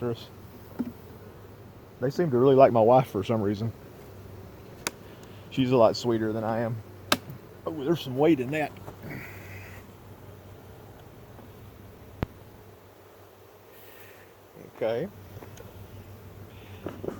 us. They seem to really like my wife for some reason. She's a lot sweeter than I am. Oh, there's some weight in that. Okay.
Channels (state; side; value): identical; both; correlation 1.00